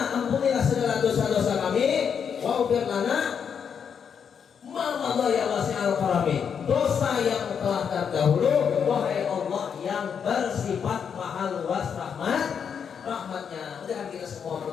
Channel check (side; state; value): right; quieter; 7.2 dB